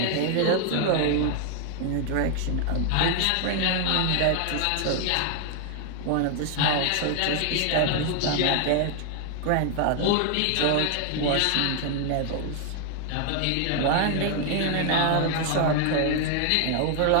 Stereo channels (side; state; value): both; different; correlation 0.00